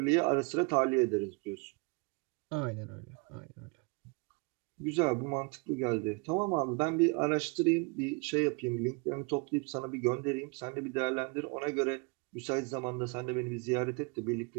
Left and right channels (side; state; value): left; quieter; 32.8 dB